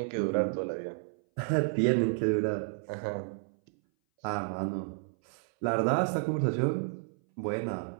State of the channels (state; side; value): silent; left; 57 dB below the other